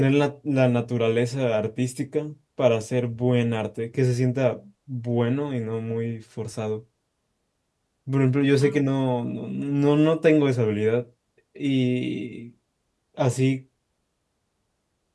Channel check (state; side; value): identical; both; correlation 1.00